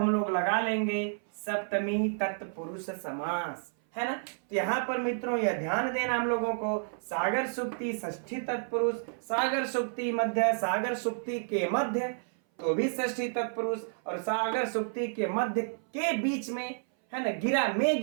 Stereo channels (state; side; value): silent; left; 57 dB below the other